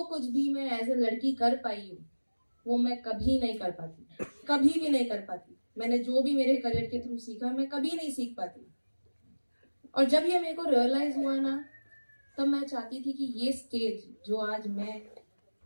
कुछ भी मैं एज ए लड़की कर पाई हूँ वो मैं कभी नहीं कर पाती, कभी भी नहीं कर पाती। मैंने जो भी मेरे करियर के थ्रू सीखा मैं कभी नहीं सीख पाती। और जब ये मेरे को रियलाइज हुआ ना, तब मैं चाहती थी कि ये स्टेज जो आज मैं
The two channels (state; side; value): inverted; both; correlation -1.00